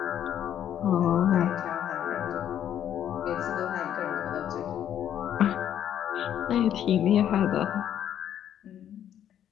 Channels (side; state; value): right; quieter; 10.3 dB